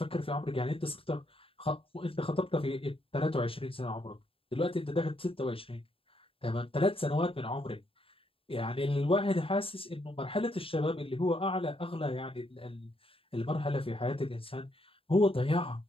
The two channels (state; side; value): late; right; 0.27 ms